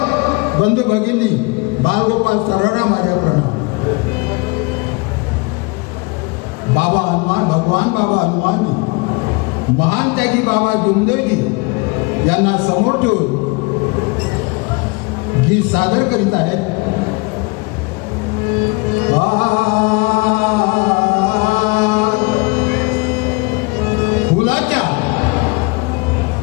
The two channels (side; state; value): right; quieter; 27.9 dB